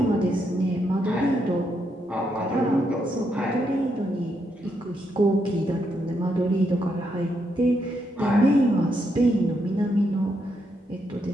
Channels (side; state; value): both; normal; correlation 0.79